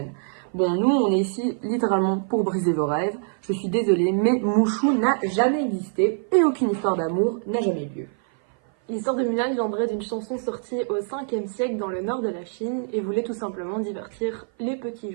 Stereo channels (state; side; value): silent; left; 56 dB below the other